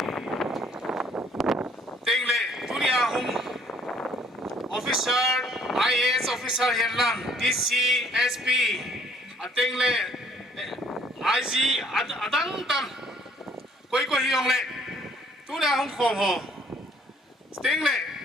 tiếng lệ dunia hung Officer IAS Officer hiền lang DC SP tiếng lệ IG adang tam quay quay hiong lệ tu na hong khom ho tiếng lệ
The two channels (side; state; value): both; normal; correlation 0.60